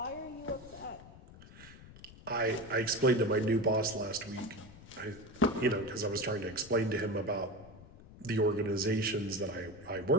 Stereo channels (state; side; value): noise; left; rumble, 19 dB below the sound